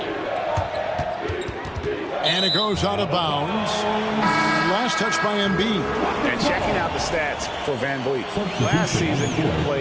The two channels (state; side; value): identical; both; correlation 1.00